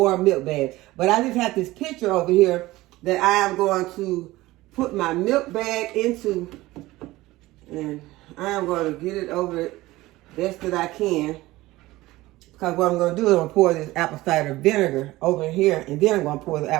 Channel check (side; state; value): left; quieter; 18.4 dB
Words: milk bags. But I just have this picture over here that I am going to put my milk bag into. And I am going to get it over it best that I can. Because what I'm going to do is I'm going to pour this apple cider vinegar over here. And then I'm going to pour the